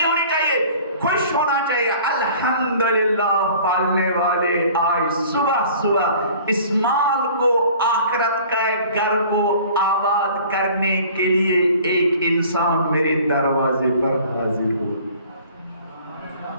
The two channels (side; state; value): both; inverted; correlation -0.49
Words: ہونی چاہیے، خوش ہونا چاہیے۔ الحمدللہ پالنے والے آج صبح صبح اس مال کو، آخرت کا گھر کو آباد کرنے کے لیے ایک انسان میرے دروازے پر حاضر ہو۔